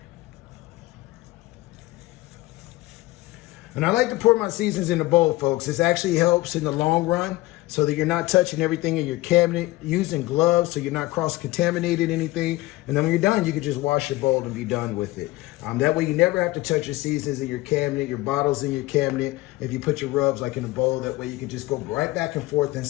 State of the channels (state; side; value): quieter; right; 19.1 dB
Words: And I like to pour my seasons in a bowl, folks. This actually helps in the long run so that you're not touching everything in your cabinet, using gloves so you're not cross-contaminating anything. And then when you're done, you can just wash your bowl and be done with it. That way you never have to touch your seasons in your cabinet, your bottles in your cabinet. If you put your rubs like in a bowl, that way you can just go right back and forth